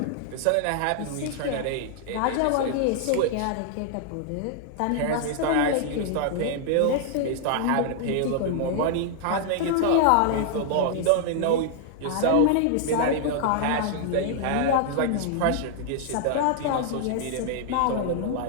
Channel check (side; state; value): both; different; correlation 0.00